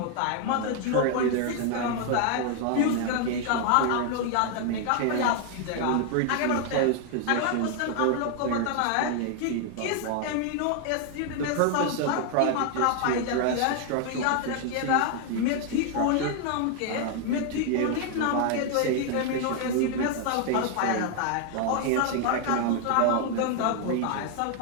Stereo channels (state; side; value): different; both; correlation 0.00